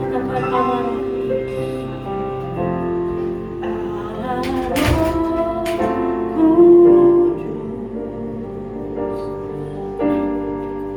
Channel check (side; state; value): both; identical; correlation 1.00